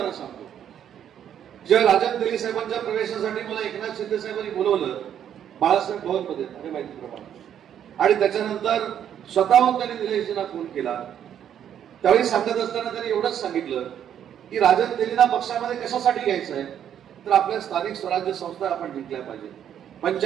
सांगतो, जेव्हा राजन तेली साहेबांच्या प्रवेशासाठी मला एकनाथ शिंदे साहेबांनी बोलवलं बाळासाहेब भवनमध्ये अरे माहितीप्रमाणे, आणि त्याच्यानंतर स्वतःहून त्यांनी निलेशजींना फोन केला. त्यावेळी सांगत असताना त्यांनी एवढंच सांगितलं की राजन तेलींना पक्षामध्ये कशासाठी घ्यायचं आहे, तर आपल्या स्थानिक स्वराज्य संस्था आपण जिंकल्या पाहिजे.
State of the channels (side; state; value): left; quieter; 9.6 dB